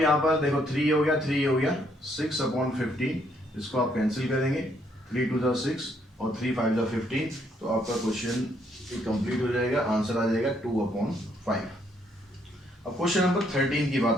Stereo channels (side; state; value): both; normal; correlation 0.70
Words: पर देखो 3 हो गया, 3 हो गया, 6/15, इसको आप कैंसिल करेंगे, 3 2 6 और 3 5 15, तो आपका क्वेश्चन कंप्लीट हो जाएगा, आंसर आ जाएगा 2/5। अब क्वेश्चन नंबर 13 की